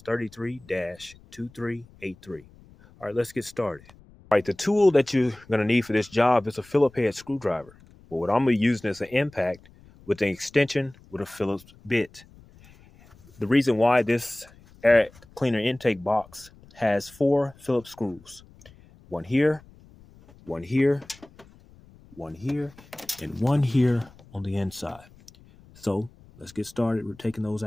33-2383. All right, let's get started. All right, the tool that you're going to need for this job is a Phillips head screwdriver. But what I'm going to be using is an impact with an extension with a Phillips bit. The reason why this air cleaner intake box has 4 Phillips screws. One here, one here, one here, and one here on the inside. So let's get started. We're taking those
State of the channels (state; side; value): noise; left; rumble, 25 dB below the sound